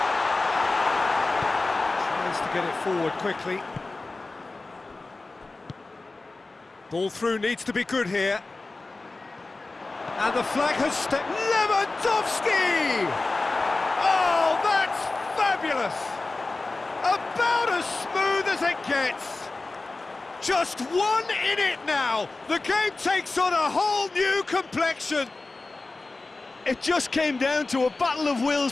tries to get it forward quickly. Ball through needs to be good here. And the flag has stepped. Lewandowski! Oh, that's fabulous! About as smooth as it gets. Just one in it now. The game takes on a whole new complexion. It just came down to a battle of wills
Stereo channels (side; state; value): right; quieter; 3.4 dB